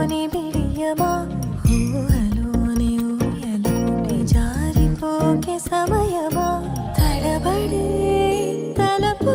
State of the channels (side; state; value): both; identical; correlation 1.00